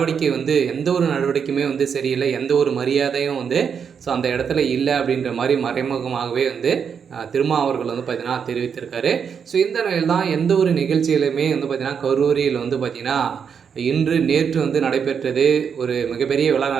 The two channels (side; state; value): left; quieter; 6.9 dB